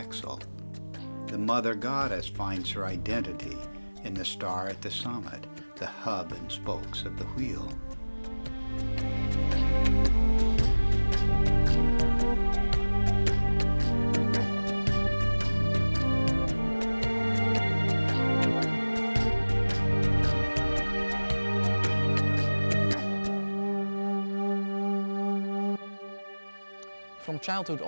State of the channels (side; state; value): both; inverted; correlation -1.00